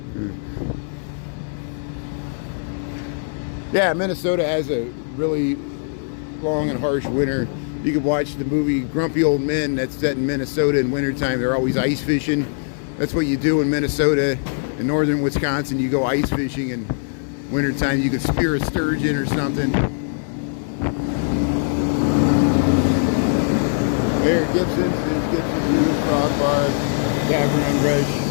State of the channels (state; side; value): silent; right; 65 dB below the other